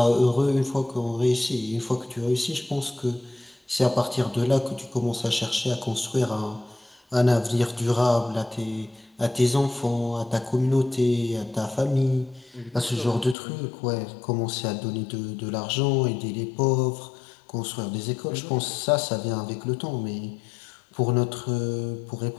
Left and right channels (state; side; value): drops out; right; at 13.4 s